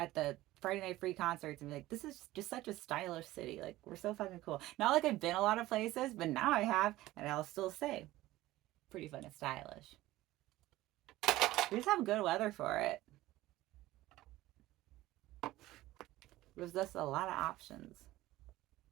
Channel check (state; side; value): quieter; left; 16.9 dB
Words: the Friday Night Free concerts and be like, this is just such a stylish city. Like we're so fucking cool. Not like I've been a lot of places, but now I have, and I'll still say, pretty fucking stylish. We just have good weather for it. There's just a lot of options.